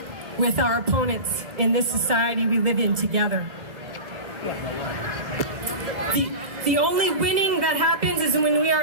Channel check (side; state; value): left; late; 2.0 ms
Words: with our opponents in this society we live in together. The only winning that happens is when we are